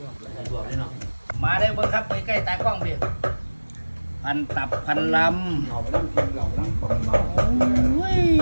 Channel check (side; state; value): both; inverted; correlation -1.00